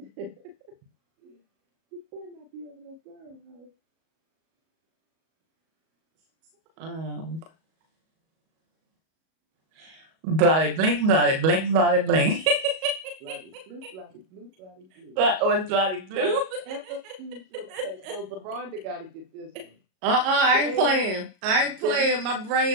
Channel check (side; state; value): left; late; 37 ms